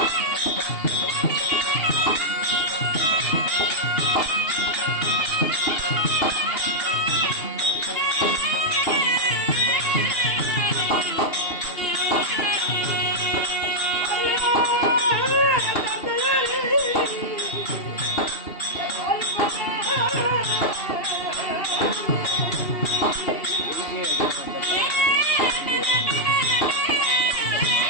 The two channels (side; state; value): right; late; 2.8 ms